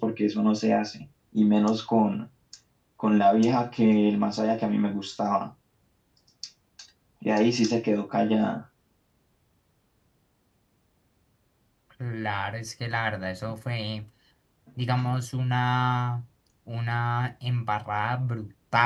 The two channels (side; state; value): both; identical; correlation 1.00